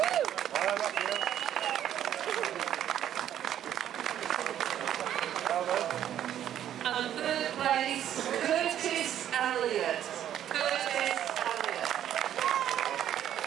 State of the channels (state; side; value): quieter; left; 10.8 dB